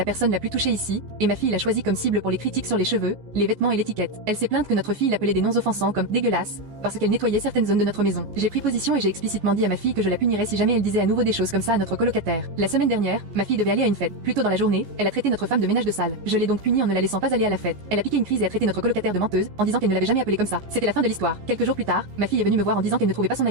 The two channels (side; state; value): left; late; 14 ms